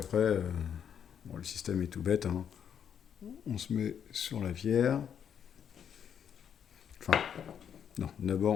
bon, le système est tout bête, hein. On se met sur la pierre. Enfin, non,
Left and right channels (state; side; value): quieter; right; 8.3 dB